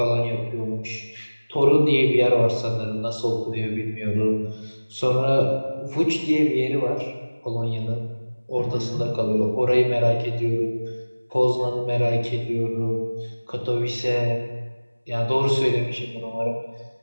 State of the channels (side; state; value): both; inverted; correlation -1.00